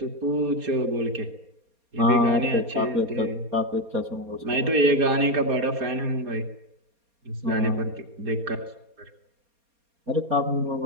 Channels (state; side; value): late; left; 4.2 ms